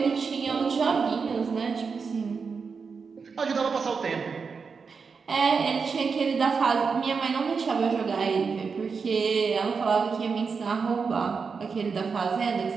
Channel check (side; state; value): left; quieter; 5.3 dB